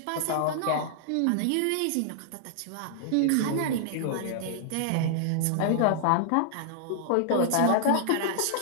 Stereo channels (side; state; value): both; different; correlation -0.01